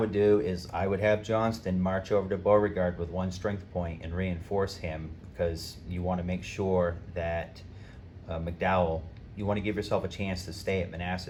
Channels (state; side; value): identical; both; correlation 1.00